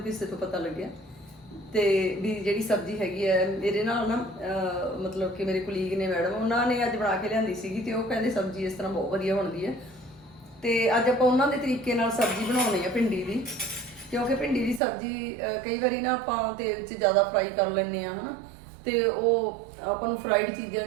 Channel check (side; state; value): left; drops out; at 14.8 s